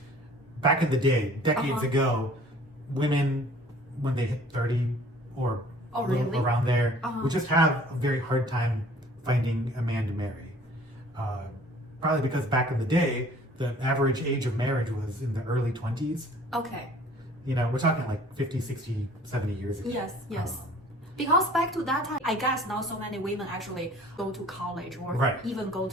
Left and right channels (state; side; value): normal; both; correlation 0.52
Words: back in the day, decades ago, women, when they hit 30 or really? around there, would just have a very hard time finding a man to marry. Probably because back in the day, the average age of marriage was in the early 20s. Okay. We're talking like 50, 60, 70 years ago. Yes. Because back to that time, I guess not so many women actually go to college or even go